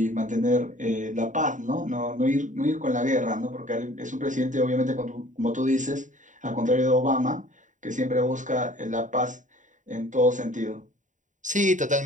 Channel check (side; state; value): left; late; 0.36 ms